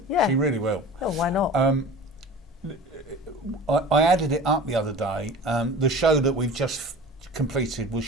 Yeah. She really will. Oh, why not? I added it up the other day. The show that we've just completed was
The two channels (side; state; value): both; normal; correlation 0.39